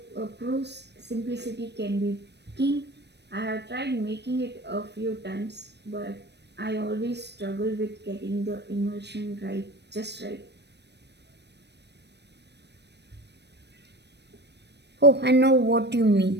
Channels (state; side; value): late; left; 0.50 ms